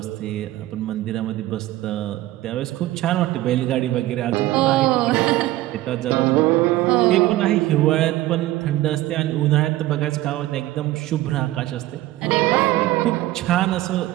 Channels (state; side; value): quieter; left; 16.4 dB